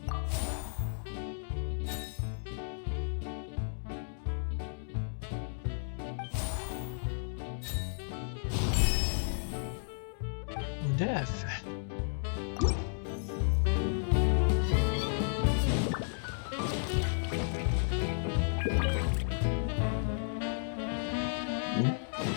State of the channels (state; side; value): silent; right; digital silence